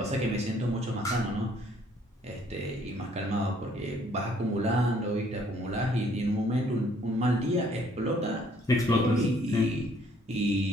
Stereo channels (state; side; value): normal; both; correlation 0.63